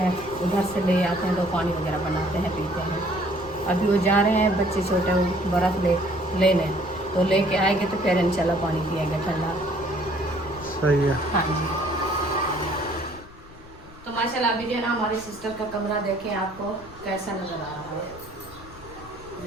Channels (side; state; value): left; noise; rumble, 20 dB below the sound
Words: उधर से ले आते हैं, तो पानी वगैरह बनाते हैं, पीते हैं। अभी वो जा रहे हैं बच्चे छोटे, वो बर्फ़ लेने, तो लेके आएंगे तो फिर इंशाल्लाह पानी पिएंगे ठंडा। सही है। हाँ जी, तो माशाल्लाह अभी जो है ना हमारी सिस्टर का कमरा देखें आपको कैसा नज़र आ रहा है।